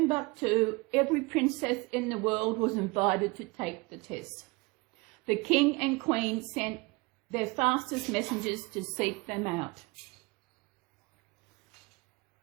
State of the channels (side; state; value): left; quieter; 25.5 dB